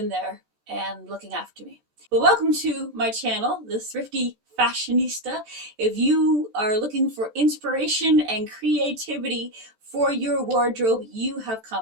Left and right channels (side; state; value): left; late; 14 ms